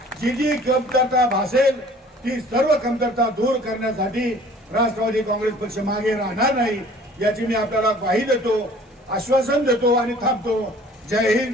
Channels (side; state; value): both; normal; correlation 0.51